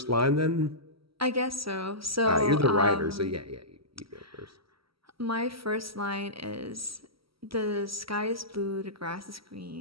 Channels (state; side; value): late; left; 0.75 ms